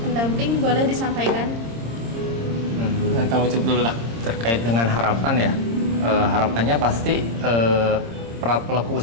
boleh disampaikan? Kamu coba dulu lah. Terkait dengan harapan ya, harapannya pasti para pelaku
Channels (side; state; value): left; late; 26 ms